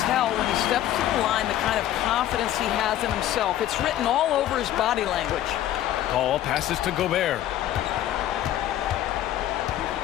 when he steps to the line the kind of confidence he has in himself. It's written all over his body language. Paul passes to Gobert.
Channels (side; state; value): right; quieter; 12.5 dB